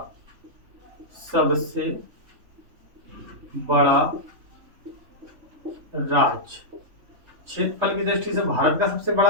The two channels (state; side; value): late; left; 3.5 ms